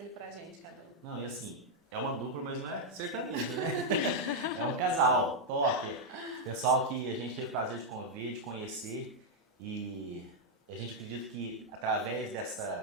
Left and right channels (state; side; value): normal; both; correlation -0.02